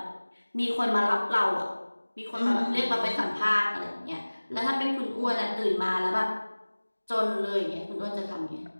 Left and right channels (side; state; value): both; inverted; correlation -1.00